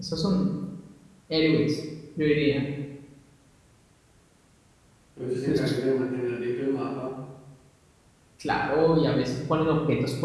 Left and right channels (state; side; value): identical; both; correlation 1.00